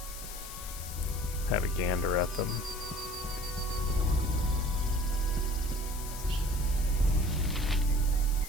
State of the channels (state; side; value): noise; left; hiss, 11 dB below the sound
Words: have a gander at them.